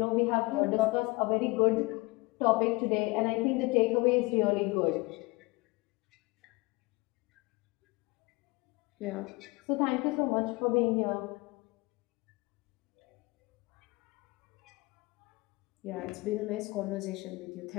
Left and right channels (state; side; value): quieter; right; 24.4 dB